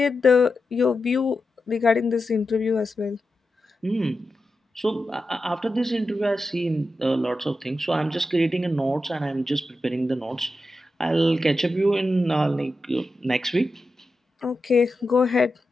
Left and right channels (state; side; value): normal; both; correlation 0.90